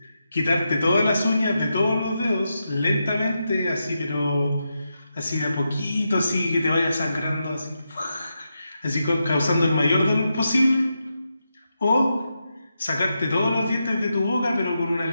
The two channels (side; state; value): both; inverted; correlation -0.86